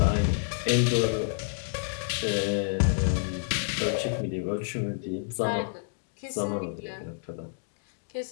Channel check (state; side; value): silent; right; digital silence